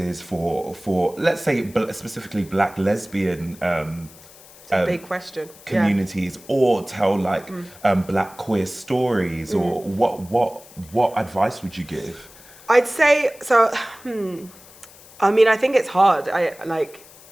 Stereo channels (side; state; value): left; noise; hiss, 22 dB below the sound